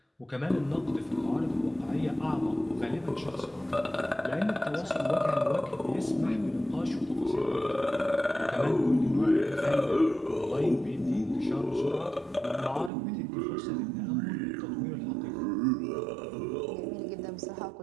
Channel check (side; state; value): left; drops out; at 12.9 s